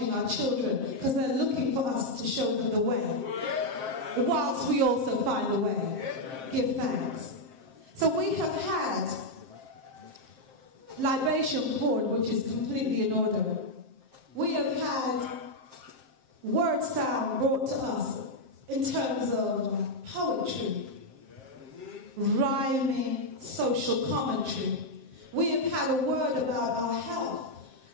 our children because they're looking for us to show them the way, whilst we also find a way. Give thanks. So we have had libation poured, which is completely in order. We have had word sound brought to us in terms of poetry, rhyming, social commentary. We have had a word about our health.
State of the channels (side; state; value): left; late; 7.6 ms